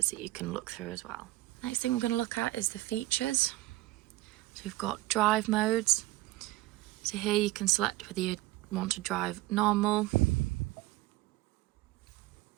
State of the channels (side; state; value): left; quieter; 18.2 dB